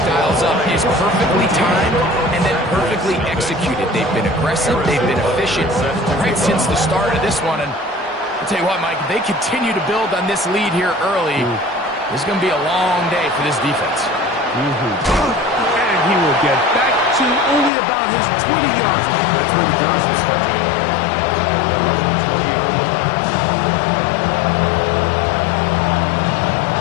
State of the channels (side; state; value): right; drops out; at 17.7 s